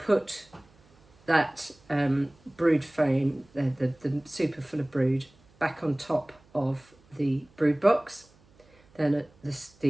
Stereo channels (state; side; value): noise; right; hum, 30 dB below the sound